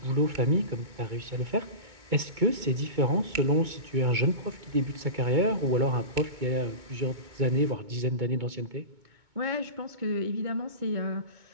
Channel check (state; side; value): late; left; 2.2 ms